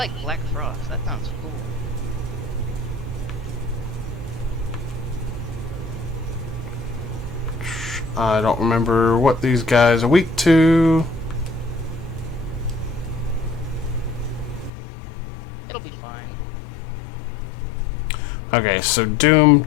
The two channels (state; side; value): drops out; right; at 14.7 s